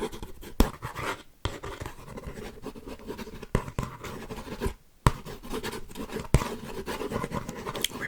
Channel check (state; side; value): identical; both; correlation 1.00